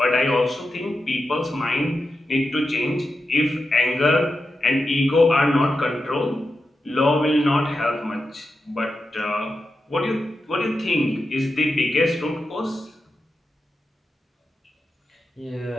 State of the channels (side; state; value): both; normal; correlation 0.89